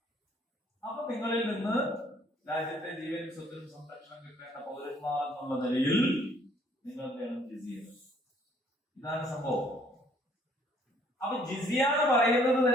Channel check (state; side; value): normal; both; correlation 0.62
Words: അപ്പൊ നിങ്ങളിൽ നിന്ന് രാജ്യത്തെ ജീവനും സ്വത്തിനും സംരക്ഷണം കിട്ടേണ്ട പൗരന്മാർ എന്നുള്ള നിലയിൽ നിങ്ങൾ വേണം ജിസിയ. ഇതാണ് സംഭവം. അപ്പൊ ജിസിയ എന്ന് പറയുന്നത്